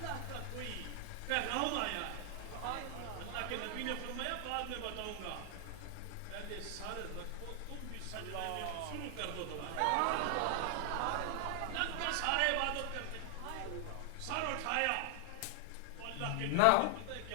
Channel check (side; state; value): both; different; correlation 0.00